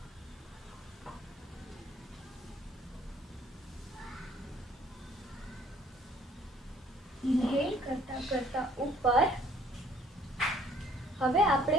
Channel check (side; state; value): both; normal; correlation 0.58